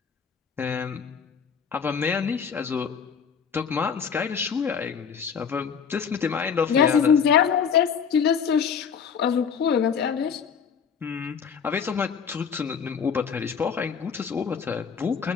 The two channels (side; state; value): right; quieter; 6.8 dB